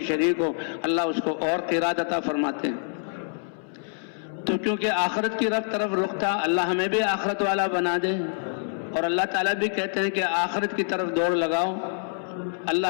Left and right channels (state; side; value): silent; right; 61 dB below the other